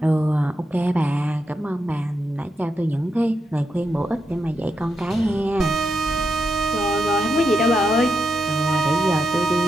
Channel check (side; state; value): both; normal; correlation 0.84